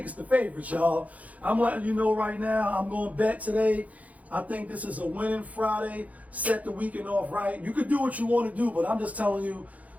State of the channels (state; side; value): late; left; 0.071 ms